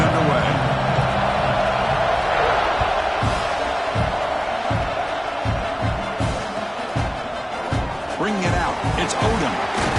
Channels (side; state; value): both; identical; correlation 1.00